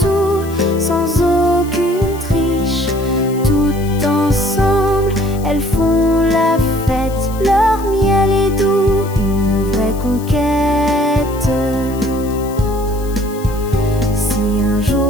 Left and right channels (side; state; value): left; noise; hiss, 19 dB below the sound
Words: sans aucune triche. Tout ensemble, elles font la fête, leur miel est doux, une vraie conquête. Si un